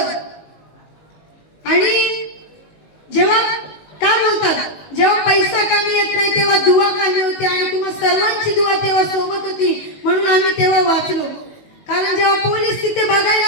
आणि जेव्हा काय बोलतात, जेव्हा पैसा कामी येत नाही तेव्हा दुआ कामी होते. आणि तुम्हा सर्वांची दुआ तेव्हा सोबत होती, म्हणून आम्ही तेव्हा वाचलो. कारण जेव्हा पोलीस तिथे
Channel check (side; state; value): right; late; 19 ms